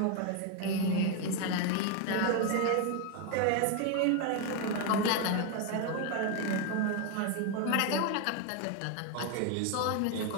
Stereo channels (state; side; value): different; both; correlation 0.01